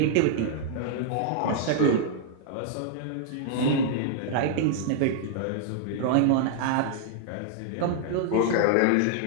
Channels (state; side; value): different; both; correlation -0.01